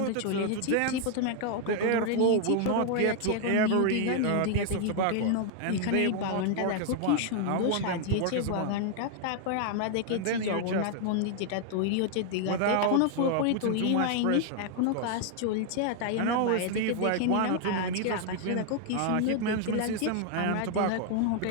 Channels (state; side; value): different; both; correlation 0.00